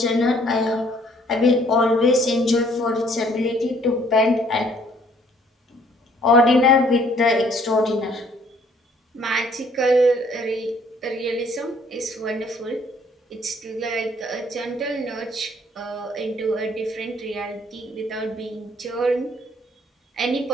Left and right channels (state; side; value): normal; both; correlation 0.61